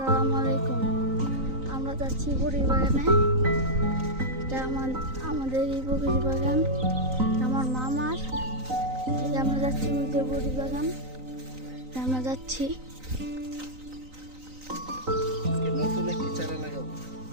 আলাইকুম। আমরা যাচ্ছি বড়ির বাগানে। এটা আমাদের এই বড়ির বাগান আমার মামার। এই যে আমরা যাচ্ছি ওই যে বড়ির বাগান, আমরা যাচ্ছি। নতুন একটি চারা লাগাবো।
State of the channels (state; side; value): late; left; 3.9 ms